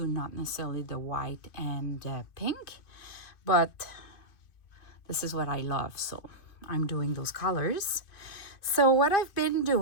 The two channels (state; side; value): late; right; 2.5 ms